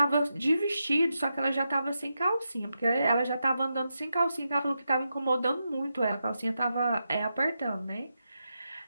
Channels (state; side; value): inverted; both; correlation -0.87